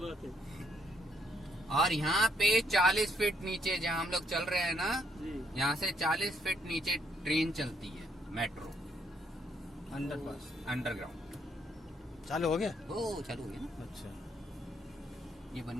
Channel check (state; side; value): normal; both; correlation 0.71